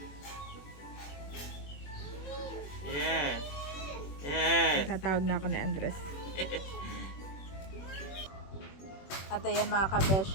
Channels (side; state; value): right; late; 21 ms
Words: Yeah. Yeah. Tatawag na ako ni Andres. At ayan mga